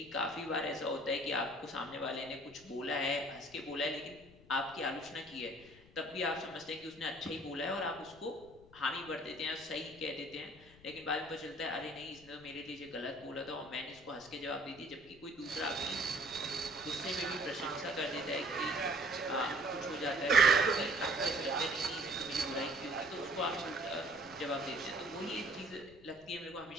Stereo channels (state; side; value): noise; left; rumble, 23 dB below the sound